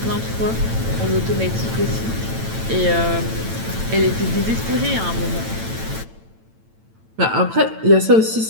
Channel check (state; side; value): late; left; 9.0 ms